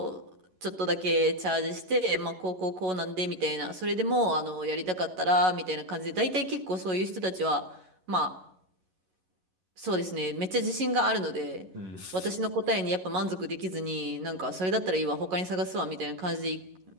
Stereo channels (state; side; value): late; left; 11 ms